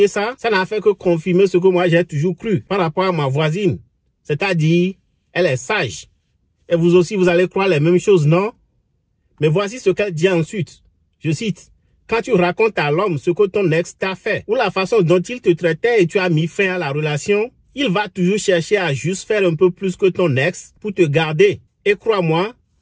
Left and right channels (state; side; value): identical; both; correlation 1.00